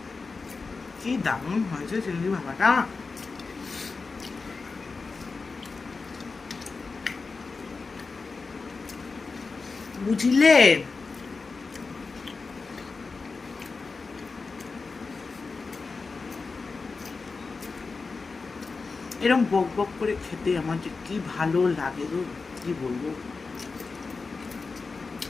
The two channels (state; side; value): quieter; right; 4.3 dB